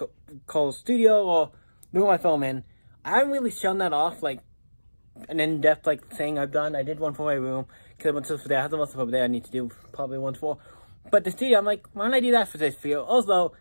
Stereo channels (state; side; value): inverted; both; correlation -1.00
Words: call studio, or the room I film in. I haven't really shown that off, like an in-depth thing I've done. I did one for my room because I went to there. I have some stuff over there I need to do probably one for. But the studio, I'm like, why don't I do that for this video? Also,